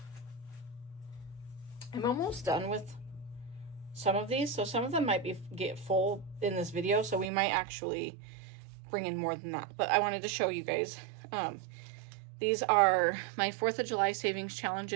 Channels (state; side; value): drops out; left; at 7.3 s